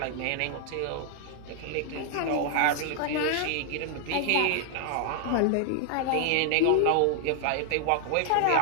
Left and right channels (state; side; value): different; both; correlation 0.00